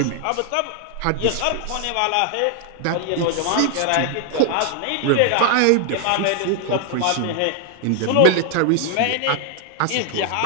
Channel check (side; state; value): both; different; correlation 0.00